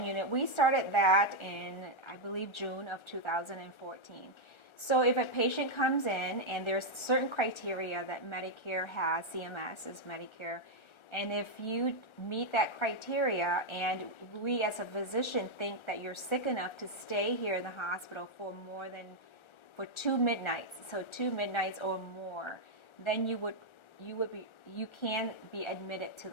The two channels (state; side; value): late; right; 1.3 ms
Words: unit. We started that in, I believe, June of 2014. So if a patient comes in and there's certain criteria that Medicare has, CMS is Medicare, and if you meet that criteria and we as a physician think that you're sick enough to stay here in the hospital for 2 midnights, so 2 midnights or more, then you can be admitted to